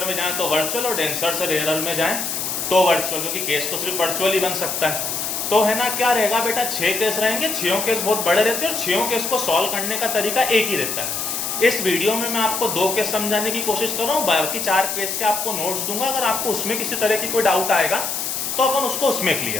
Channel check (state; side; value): noise; left; hiss, 2 dB below the sound